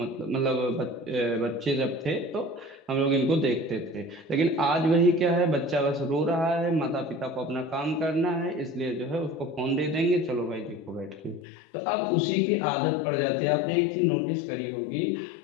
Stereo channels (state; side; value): drops out; right; at 11.4 s